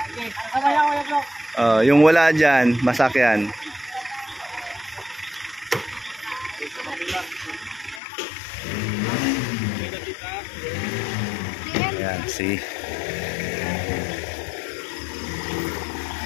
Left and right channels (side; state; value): right; drops out; at 8.0 s